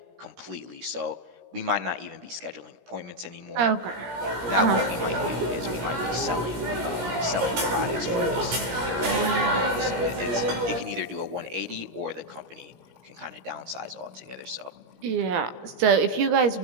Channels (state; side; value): late; left; 17 ms